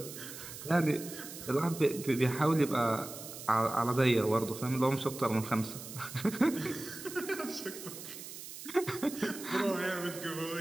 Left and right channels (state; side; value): noise; right; hiss, 11 dB below the sound